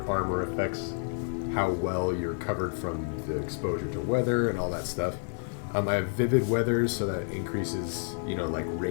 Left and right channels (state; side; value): silent; right; 58 dB below the other